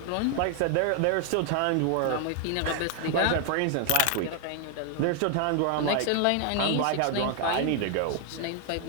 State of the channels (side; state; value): both; different; correlation 0.00